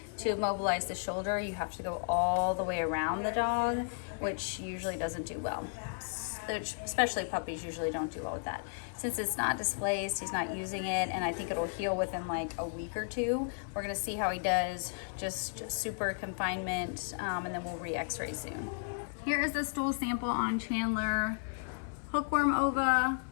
To immobilize the shoulder, you have to go all the way around the dog, which usually doesn't do well. Especially puppies usually don't do well with that. Since it's not displaced, he's not using it, and I think it'll heal within like a week or two. We're gonna see how he does, just super confinement, and then we'll re-x-ray soon. Here is the stool sample on Chandler. Hookworm ova,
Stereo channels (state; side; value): silent; right; 55 dB below the other